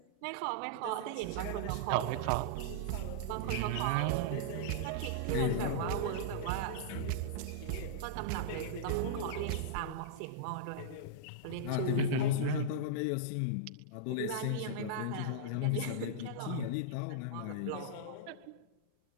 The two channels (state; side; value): different; both; correlation -0.02